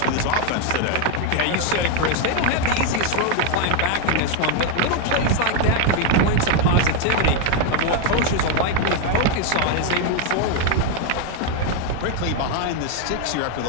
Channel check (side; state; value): both; different; correlation 0.01